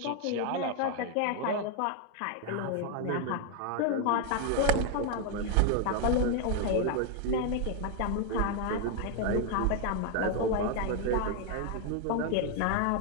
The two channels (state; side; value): different; both; correlation 0.00